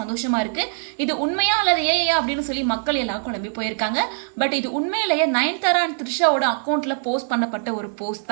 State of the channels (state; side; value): silent; left; digital silence